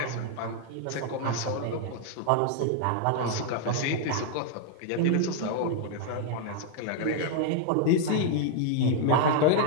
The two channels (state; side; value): different; both; correlation -0.01